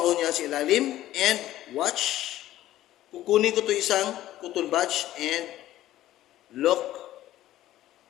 niya sa ilalim and watch. Kukunin ko to isang cotton buds and look.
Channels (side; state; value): right; quieter; 14.1 dB